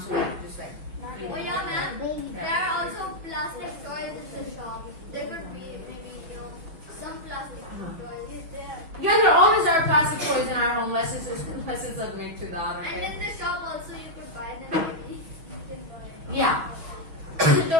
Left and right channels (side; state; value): left; late; 6.2 ms